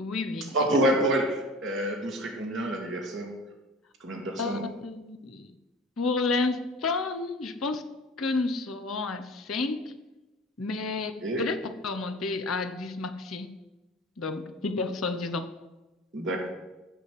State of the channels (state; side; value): normal; both; correlation 0.39